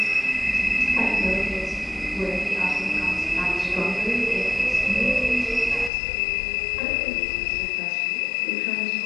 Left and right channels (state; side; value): drops out; right; at 5.9 s